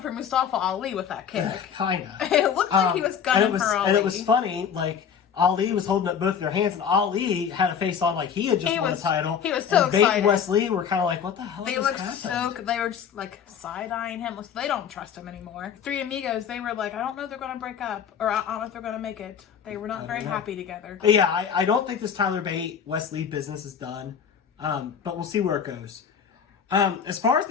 for Mustafa Ali with that kick. Kinda. It looked like he was gunning for Ali. And it was funny, like, Ali was holding up both their hands, and Ali had a face on like he had just won the title. He was so excited. Bate and Wes Lee were kind of like, what the hell They were just, like, side-eyeing him. They don't trust him anymore. Three Amigos, they were like, I don't know if they're going to break up, or I don't know if they're going to make it. They were not very happy together. But yeah, I don't think this Tyler Bate, Wes Lee business is done, but we'll see where it goes. As far as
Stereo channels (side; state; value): right; quieter; 7.7 dB